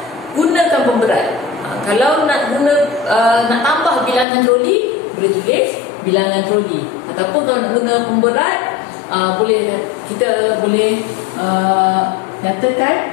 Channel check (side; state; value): right; drops out; at 4.2 s